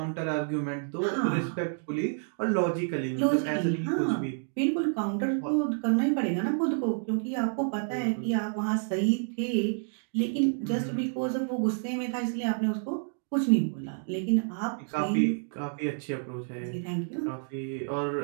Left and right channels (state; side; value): silent; left; 58 dB below the other